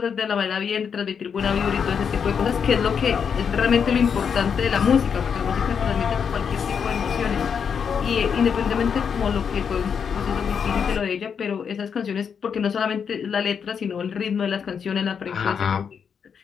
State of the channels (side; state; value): right; quieter; 6.9 dB